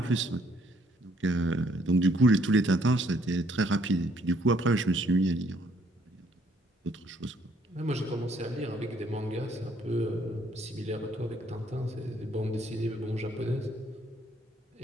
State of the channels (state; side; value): normal; both; correlation 0.66